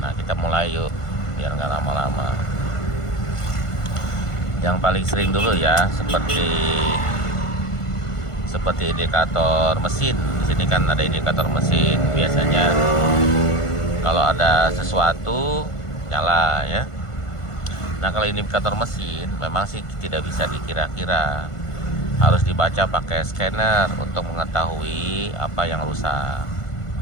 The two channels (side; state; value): right; late; 1.5 ms